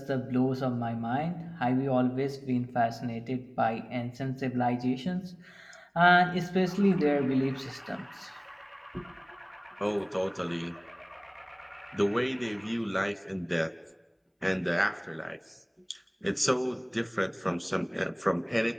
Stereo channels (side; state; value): both; identical; correlation 1.00